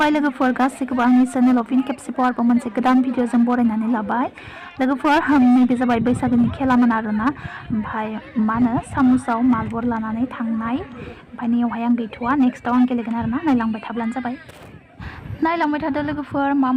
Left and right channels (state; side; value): identical; both; correlation 1.00